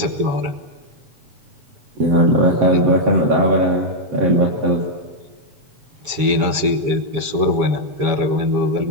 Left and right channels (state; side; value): late; left; 7.3 ms